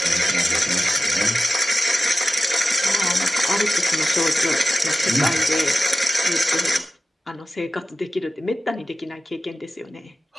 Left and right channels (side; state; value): both; normal; correlation 0.95